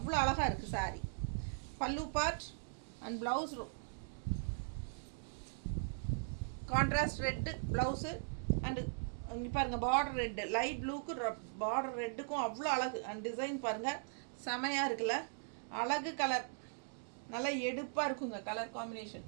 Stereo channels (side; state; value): left; silent; digital silence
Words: அழகாக இருக்குது சாரீ. பல்லு part and blouse contrast red blouse and இங்கே பாருங்கள் பார்டர் ரெட்டு, லைட் ப்ளூக்கு பார்டர் ரெட்டுக்கும் அவ்வளோ அழகு. அண்ட் டிசைன் பாருங்கள், செமையாக இருக்குல்ல? அழகு கலர், நல்லா எடுப்பாக இருக்குங்க. கலர்